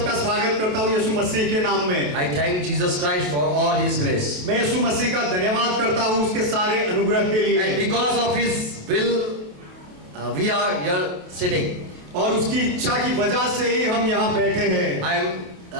स्वागत करता हूँ यीशु मसीह के नाम में। I thank Jesus Christ for all his grace. मैं यीशु मसीह का धन्यवाद करता हूँ उसके सारे अनुग्रह के लिए। And because of his will we are here sitting. और उसकी इच्छा की वजह से ही हम यहाँ बैठे हैं। I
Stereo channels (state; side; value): late; left; 27 ms